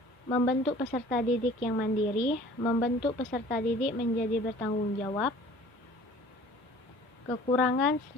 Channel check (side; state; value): both; normal; correlation 0.48